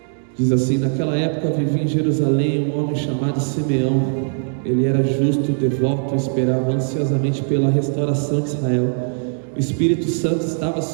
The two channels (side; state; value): left; silent; digital silence